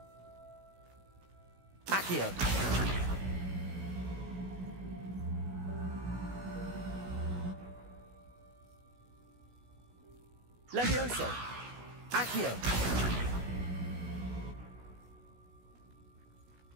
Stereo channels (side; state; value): left; late; 16 ms